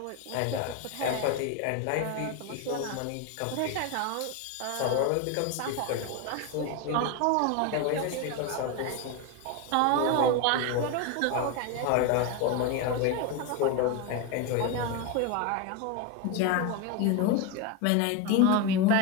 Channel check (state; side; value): different; both; correlation 0.03